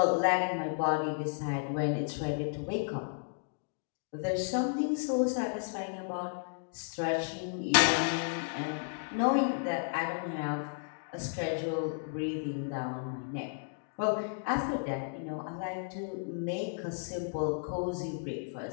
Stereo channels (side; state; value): right; silent; digital silence